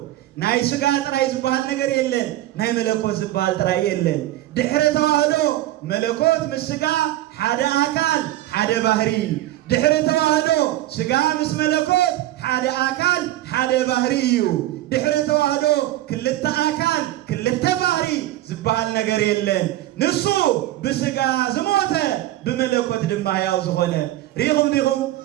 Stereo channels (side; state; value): left; quieter; 15.0 dB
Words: ናይ ስጋ ጥራይ ዝበሃል ነገር የለን ናይ መለኮት ዝበሃል ጥራይ የለን ድሕረ ተዋህዶ መለኮት ምስ ስጋ ሓደ አካል ሓደ ባህሪ ድሕረ ተዋህዶ ስጋ ምስ መለኮት ሓደ አካል ሓደ ባህሪ እዩ ድሕረ ተዋህዶ ክልተ አካል ክልተ ባህሪ ዝበሃል ነገር የለን ንሱ ብስጋ ዝሞተ ብመለኮት ድማ ሕያው ዝኾነ ሪኹም ዲኹም